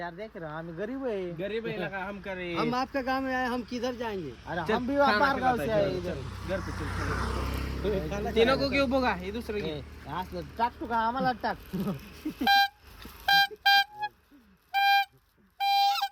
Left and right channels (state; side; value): identical; both; correlation 1.00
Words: दे की रे. आम्ही गरीब आहे. गरीब आहे लगा हम करे. हम आपके गांव में आए हम किधर जाएंगे अरे हम भी बाहर गाव से आए इधर. घर पे चल. ते नको घेऊ बघा हे दुसरं घे. असलं टाक तू का आम्हाला टाक.